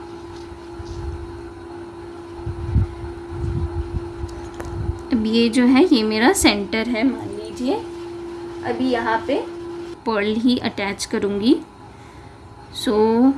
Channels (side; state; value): both; identical; correlation 1.00